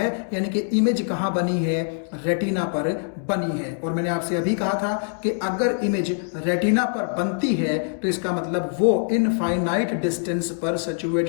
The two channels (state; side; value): silent; right; 63 dB below the other